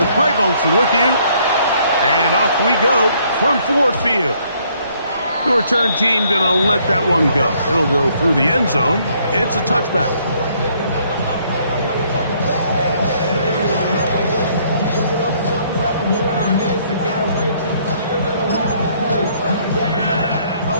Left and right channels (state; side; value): inverted; both; correlation -0.66